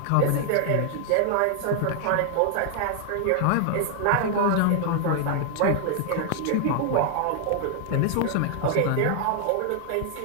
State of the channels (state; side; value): different; both; correlation 0.00